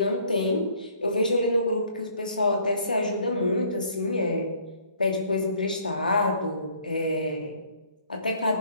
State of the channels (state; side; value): inverted; both; correlation -0.60